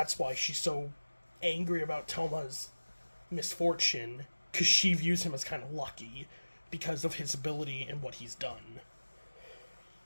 why she's so angry about Toma's misfortune, because she views him as kind of lucky because of his ability and what he's done.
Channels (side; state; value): both; inverted; correlation -1.00